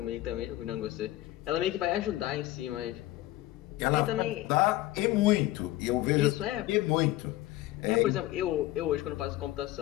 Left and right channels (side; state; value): right; quieter; 16.3 dB